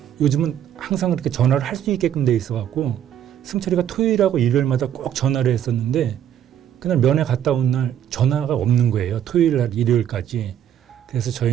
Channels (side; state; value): left; quieter; 10.1 dB